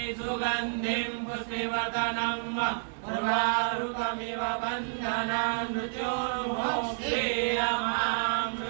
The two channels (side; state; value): left; silent; digital silence